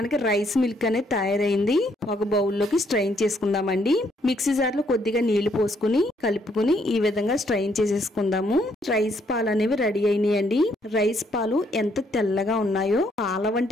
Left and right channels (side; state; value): both; normal; correlation 0.70